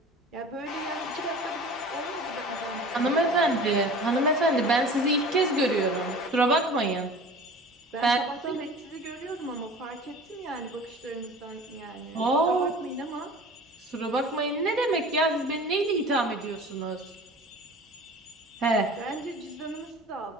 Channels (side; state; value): both; normal; correlation 0.41